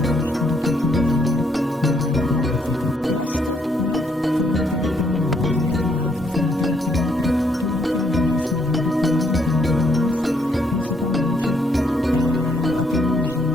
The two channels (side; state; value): both; normal; correlation 0.72